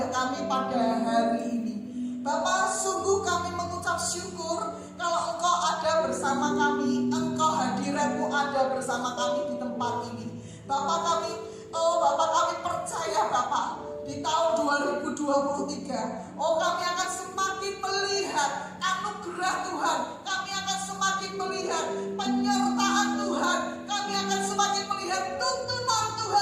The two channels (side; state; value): both; identical; correlation 1.00